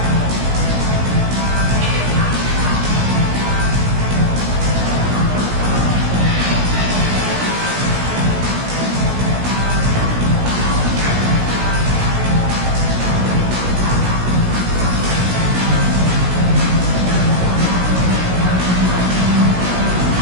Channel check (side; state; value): left; late; 17 ms